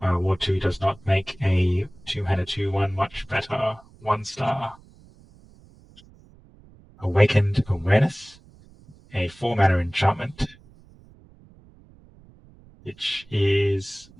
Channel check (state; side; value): noise; right; rumble, 26 dB below the sound